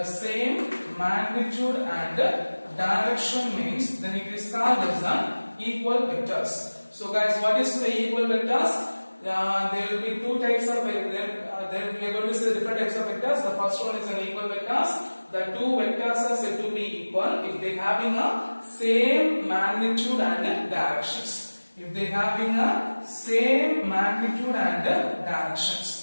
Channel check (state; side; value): inverted; both; correlation -1.00